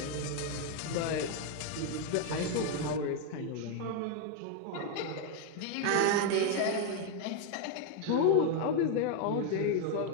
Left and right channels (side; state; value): both; different; correlation 0.01